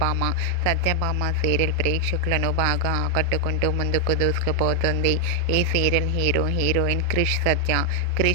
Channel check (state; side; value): different; both; correlation 0.00